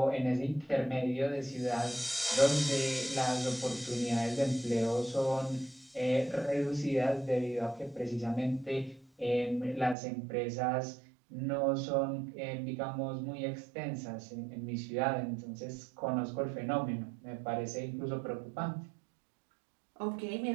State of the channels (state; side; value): drops out; left; at 10.0 s